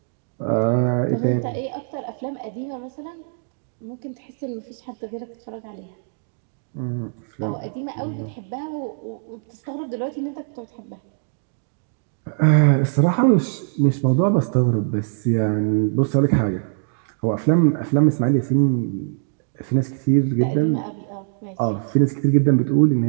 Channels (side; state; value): left; silent; digital silence